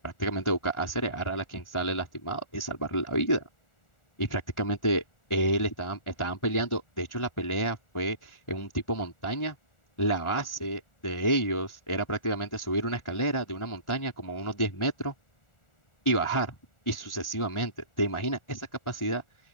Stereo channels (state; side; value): late; right; 1.4 ms